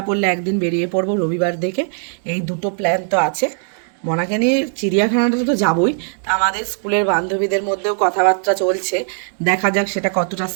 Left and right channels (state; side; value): silent; left; 67 dB below the other